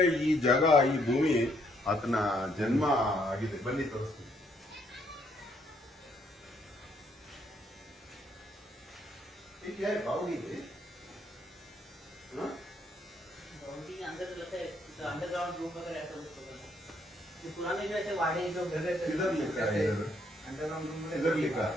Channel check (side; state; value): both; normal; correlation 0.70